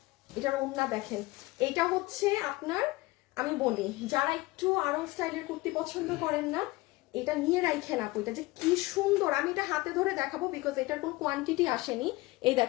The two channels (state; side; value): quieter; right; 21.0 dB